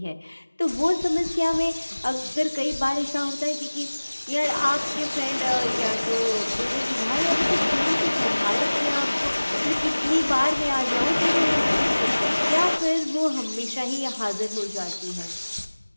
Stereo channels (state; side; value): inverted; both; correlation -1.00